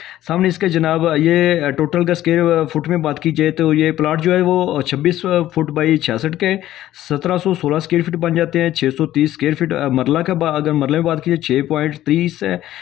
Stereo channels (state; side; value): quieter; right; 13.6 dB